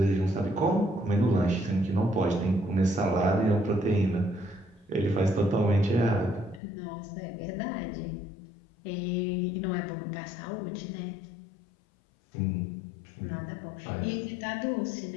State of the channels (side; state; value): right; drops out; at 6.6 s